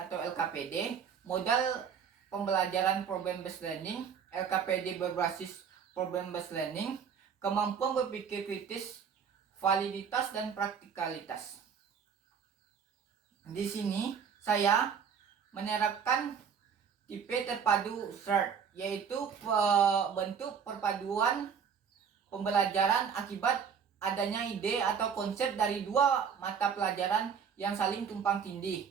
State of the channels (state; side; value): quieter; left; 7.0 dB